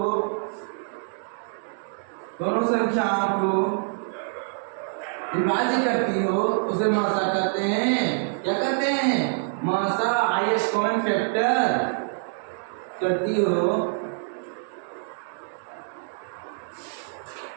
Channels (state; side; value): silent; left; digital silence